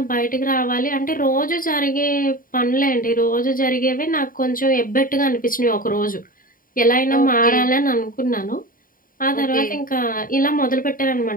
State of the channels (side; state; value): right; late; 0.41 ms